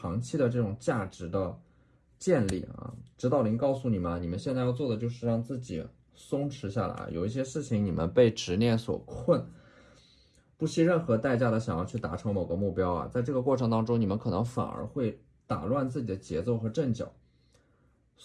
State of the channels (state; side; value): identical; both; correlation 1.00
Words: 期的这种价值的建立啊。指导灵告诉你们，你们现在要做的就是让自己松弛下来，有一些事情你们被执念所困，不惜任何代价的想要去达成某个目标啊，在这个过程当中，你们可能反而会打乱自己的节奏和阵脚。